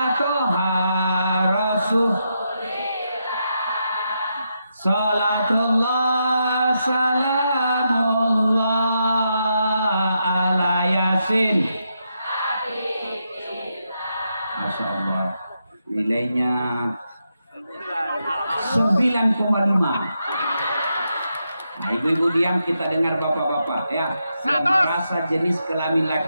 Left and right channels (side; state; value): both; inverted; correlation -0.83